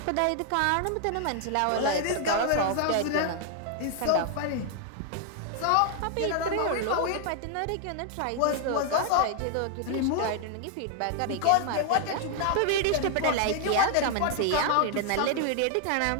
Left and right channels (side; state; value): both; different; correlation 0.00